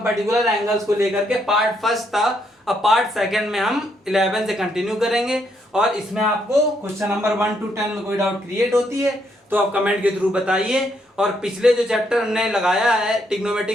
particular angles को लेकर के पार्ट फर्स्ट था, अब पार्ट सेकंड में हम 11 से कंटिन्यू करेंगे और इसमें आपको क्वेश्चन नंबर 1 to 10 में कोई डाउट क्रिएट होती है तो आप कमेंट के थ्रू बताइए। और पिछले जो चैप्टर हमने लगाया है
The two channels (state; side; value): normal; both; correlation 0.74